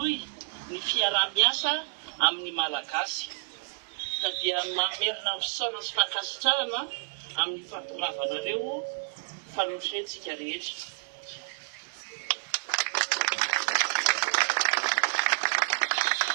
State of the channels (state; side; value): silent; left; digital silence